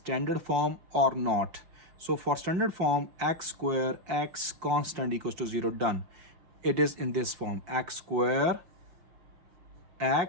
form or not. So for standard form, x square, x constant equals to 0, done. It is in this form, x square,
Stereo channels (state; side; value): late; left; 5.6 ms